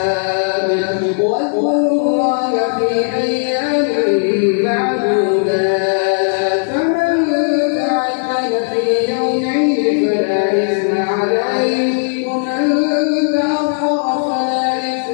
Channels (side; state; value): right; silent; 68 dB below the other